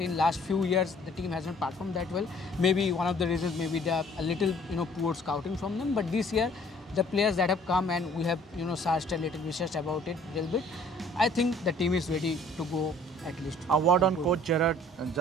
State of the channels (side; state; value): both; normal; correlation 0.55